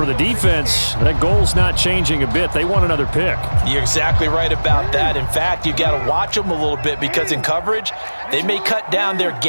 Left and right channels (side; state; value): both; inverted; correlation -1.00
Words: the defense, that goal's not changing a bit. They want another pick. You're exactly right about that. In fact, you got to watch them a little bit because in coverage, they may cut down their